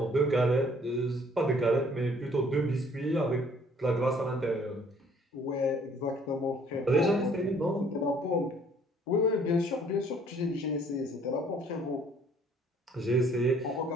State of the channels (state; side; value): normal; both; correlation 0.59